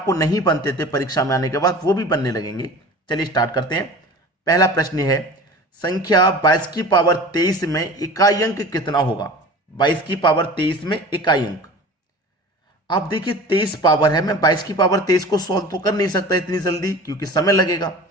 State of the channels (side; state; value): both; normal; correlation 0.38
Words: नहीं बनते थे परीक्षा में आने के बाद वो भी बनने लगेंगे। चलिए स्टार्ट करते हैं। पहला प्रश्न है, संख्या 22 की पावर 23 में इकाई अंक कितना होगा? 22 की पावर 23 में इकाई अंक। आप देखिए 23 पावर है, मैं 22 की पावर 23 को सॉल्व तो कर नहीं सकता इतनी जल्दी क्योंकि समय लगेगा,